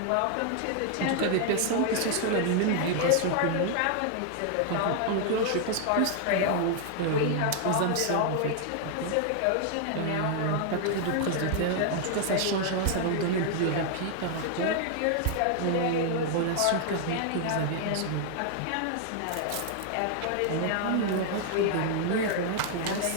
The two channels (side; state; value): both; different; correlation 0.00